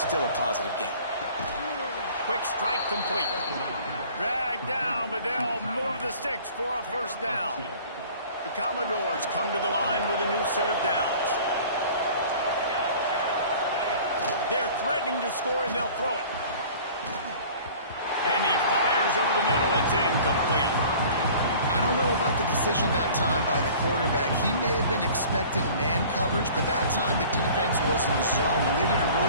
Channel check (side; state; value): both; inverted; correlation -0.47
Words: still a positive game. Quick strike complete. Dragged down, but they'll move the sticks for a first down. The Commodores come to the line with a new set of downs. They're threatening to score, and they'll throw it. And he fires over the middle. It's incomplete. I don't know about the decision that time by the quarterback. He may have been expecting man coverage, but that time the defense was in zone, and they did a